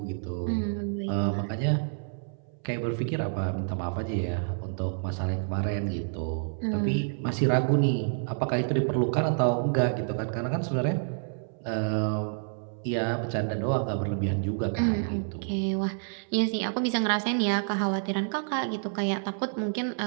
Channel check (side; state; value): left; silent; 59 dB below the other